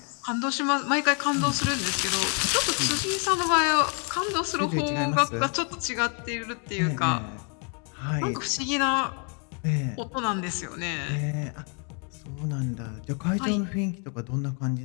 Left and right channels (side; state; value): right; quieter; 38.1 dB